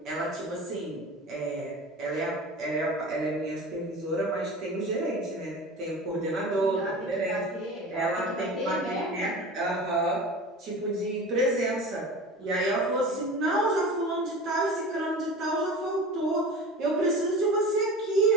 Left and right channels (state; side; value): normal; both; correlation 0.35